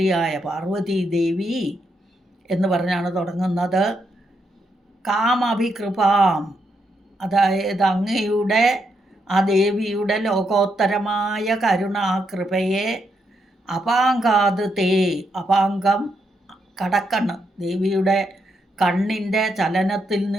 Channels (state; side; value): normal; both; correlation 0.80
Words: പാർവതീദേവി എന്ന് പറഞ്ഞാണ് തുടങ്ങുന്നത്. കാമഭികൃപാം, അതായത് അങ്ങയുടെ ആ ദേവിയുടെ ലോകോത്തരമായ കരുണാകൃപയെ അപാങ്കാത് തേ, അപാങ്കം കടക്കണ്ണ്, ദേവിയുടെ കണ്ണിൻ്റെ ചലനത്തിൽ